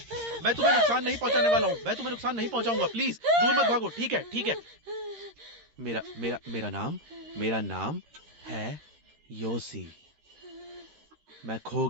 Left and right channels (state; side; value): late; left; 13 ms